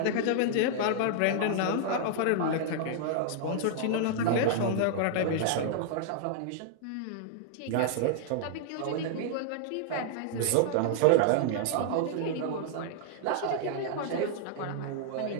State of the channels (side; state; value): both; different; correlation -0.01